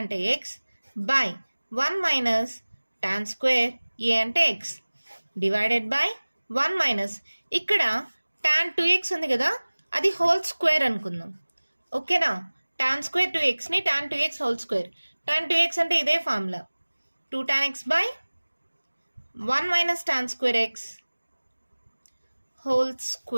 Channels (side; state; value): both; inverted; correlation -1.00